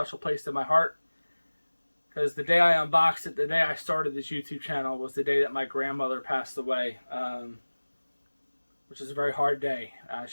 place in my heart. Because the day I unboxed it, the day I started this YouTube channel, was the day that my grandmother passed away. Which is a very hard day.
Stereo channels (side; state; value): both; inverted; correlation -1.00